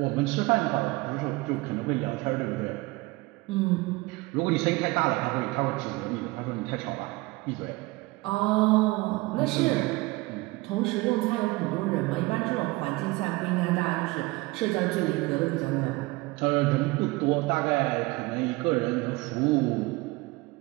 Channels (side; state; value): left; quieter; 22.5 dB